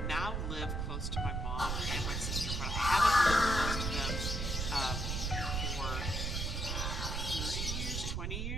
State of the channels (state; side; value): noise; right; rumble, 1 dB below the sound